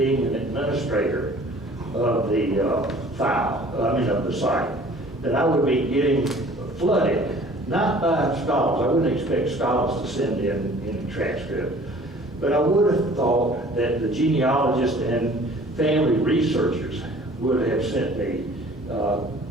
an administrator of the of the site, that I would be getting flooded, not by scholars. I wouldn't expect scholars to send in a transcript, but I would have thought that the genealogists and family researchers would have sent me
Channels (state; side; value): normal; both; correlation 0.50